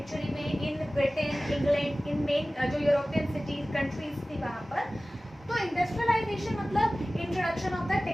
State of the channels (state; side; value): normal; both; correlation 0.97